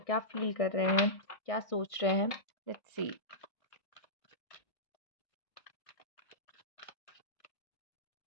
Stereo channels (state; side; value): late; right; 1.5 ms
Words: क्या फील कर रहे हैं, क्या सोच रहे हैं। Let's see.